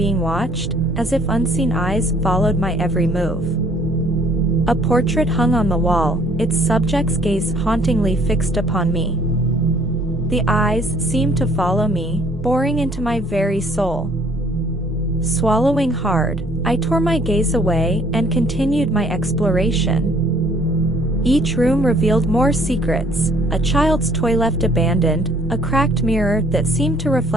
watched, as if unseen eyes followed my every move. A portrait hung on the wall, its subject's gaze hauntingly fixed upon me. The eyes seemed to follow me, boring into my very soul. Swallowing hard, I tore my gaze away and continued my exploration. Each room revealed more secrets: a child's toy left abandoned, a cracked mirror that seemed to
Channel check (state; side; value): normal; both; correlation 0.60